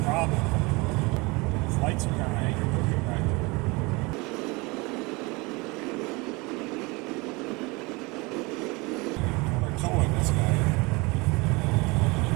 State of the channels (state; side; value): quieter; left; 25.6 dB